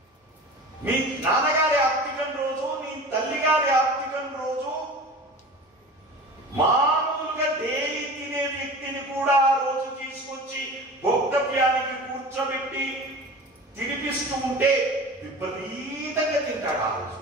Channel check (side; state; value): both; normal; correlation 0.36